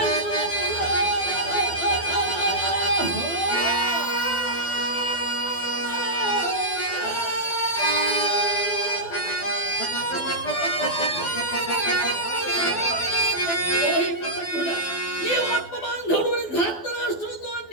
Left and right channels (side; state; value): right; late; 12 ms